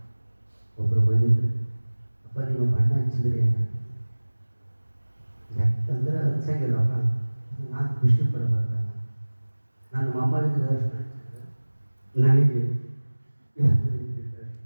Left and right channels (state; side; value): inverted; both; correlation -1.00